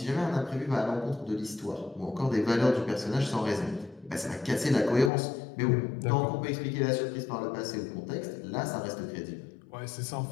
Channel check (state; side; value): drops out; right; at 5.1 s